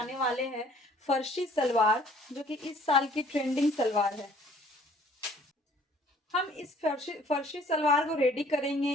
वाले हैं फर्शी सलवार, जो कि इस साल की ट्रेंडिंग सलवार है। हम इस फर्शी सलवार को रेडी करेंगे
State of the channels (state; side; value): normal; both; correlation 0.57